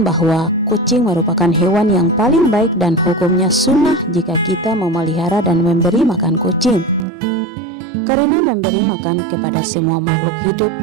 bahwa kucing merupakan hewan yang paling baik dan hukumnya sunnah jika kita memelihara dan memberi makan kucing. Karena memberi makan kepada semua makhluk hidup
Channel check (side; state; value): left; drops out; at 7.1 s